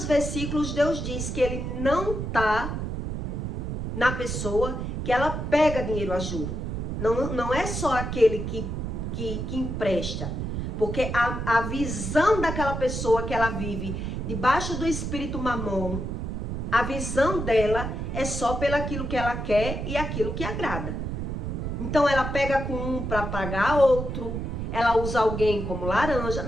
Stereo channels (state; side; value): noise; right; rumble, 3 dB below the sound